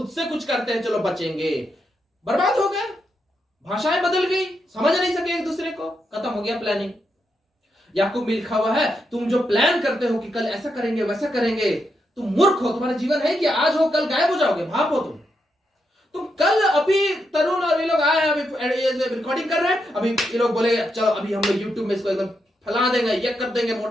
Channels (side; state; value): both; normal; correlation 0.83